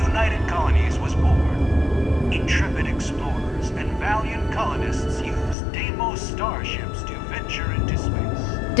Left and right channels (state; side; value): drops out; right; at 5.6 s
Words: Colonies was born. Intrepid explorers and valiant colonists used Deimos starships to venture into space.